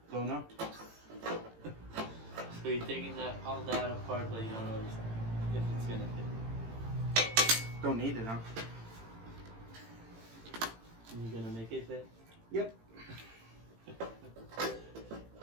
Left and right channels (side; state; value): left; late; 18 ms